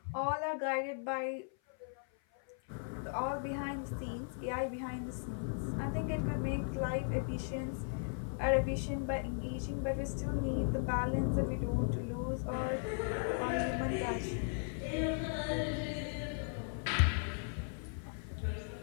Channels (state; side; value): silent; right; 53 dB below the other